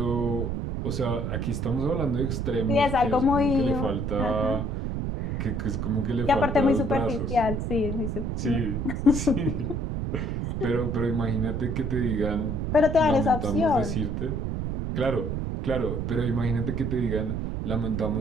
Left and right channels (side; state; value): right; noise; rumble, 2 dB below the sound